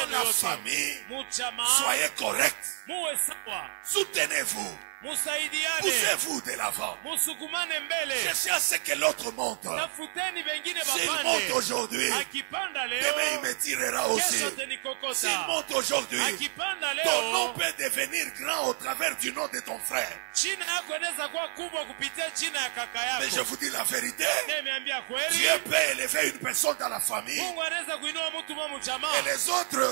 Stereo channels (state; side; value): silent; left; 58 dB below the other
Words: la yote, famille, mu jamaa, soyez corrects. muwe sawa, Soutenez-vous. musaidiane, Poussez-vous de l'avant. musukumane mbele. Cherchez à ce que l'autre monte. Tafuteni wengine S'il monte bapande. aujourd'hui, Akipanda demain il leo, me tirera aussi. kesho S'il tenikokota. monte aujourd'hui, Akipanda ton nom leo, peut devenir grand au travers du nom de ton frère. jina yako inaweza kuwa kubwa kupitia jina ya kaka Mais je yako. vous dis la vérité, Nimeambia kweli, Dieu peut élever une personne dans la famille Mungu anaweza kuinua mtu mwa et mjamaa. les